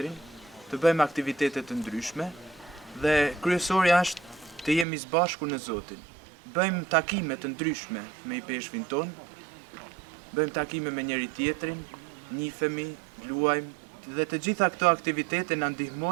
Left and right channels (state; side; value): drops out; left; at 4.9 s